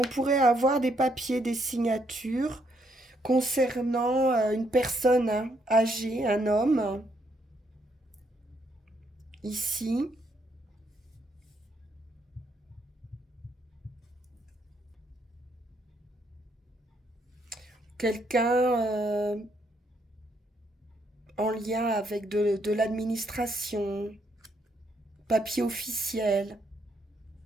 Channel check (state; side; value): normal; both; correlation 0.73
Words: pourrait avoir des papiers, des signatures concernant une personne hein, âgée, un homme, ici. Quelqu'un en lien avec de l'administration, papier officiel.